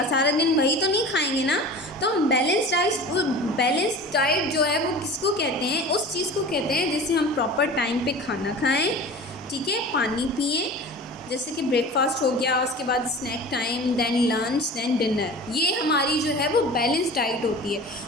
सारा दिन वही तो नहीं खाएंगे ना। तो बैलेंस डाइट जो है वो किसको कहते हैं, उस चीज़ को कहते हैं जिससे हम प्रॉपर टाइम पे खाना खाएं। ठीक है, पानी पिएं, जैसे कि ब्रेकफास्ट हो गया, उसके बाद snack time, then lunch, then dinner. ये हमारी जो है वो बैलेंस डाइट होती है।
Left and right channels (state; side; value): normal; both; correlation 0.37